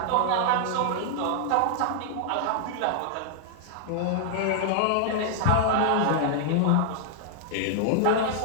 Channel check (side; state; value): both; different; correlation -0.01